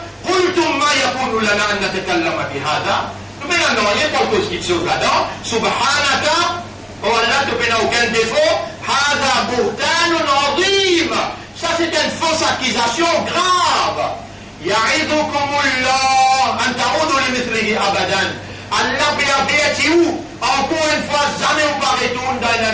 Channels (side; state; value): both; identical; correlation 1.00